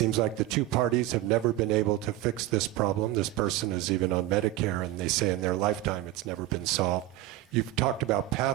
like the 2 parties have never been able to fix this problem. This person is even on Medicare, and they say in their lifetime it's never been solved. You've talked about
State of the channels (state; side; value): quieter; left; 15.5 dB